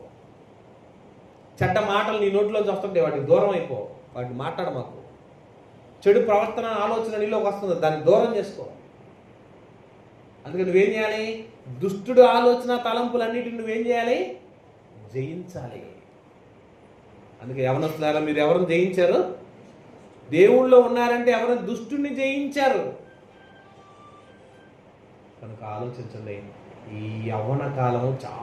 చెడ్డ మాటలు నీ నోట్లోంచి వస్తుంటాయి, వాటికి దూరం అయిపో. వాటిని మాట్లాడ మాకు. చెడు ప్రవర్తన ఆలోచన నీలోకి వస్తుంది, దాన్ని దూరం చేసుకో. అందుకని నువ్వేం చేయాలి? దుష్టుడు ఆలోచన తలంపులన్నిటిని నువ్వేం చేయాలి? జయించాలి. అందుకే యవనస్తులారా, మీరు ఎవరిని జయించారు? దేవుళ్ళో ఉన్నారంటే ఎవరిని? దుష్టుని జయించారు. కనుక ఆలోచించండి, ఈ యవ్వన కాలం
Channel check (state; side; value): identical; both; correlation 1.00